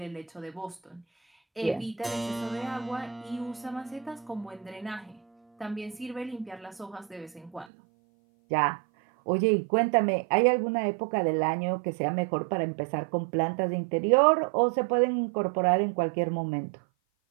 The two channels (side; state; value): left; drops out; at 7.7 s